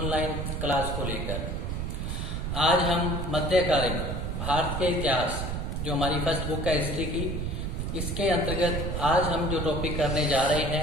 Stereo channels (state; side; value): noise; right; rumble, 3 dB below the sound